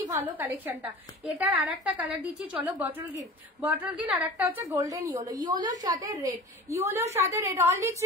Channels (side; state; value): both; normal; correlation 0.37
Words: ভালো কালেকশনটা। এটার আর একটা কালার দিচ্ছি, চলো বটল গ্রিন, আর একটা হচ্ছে গোল্ডেন ইয়েলো, ইয়েলোর সাথে রেড, অনলি